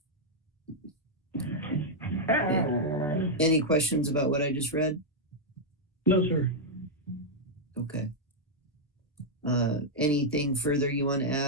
Any questions about what I just read? No, sir. Okay. Anything further you want to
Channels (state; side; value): normal; both; correlation -0.04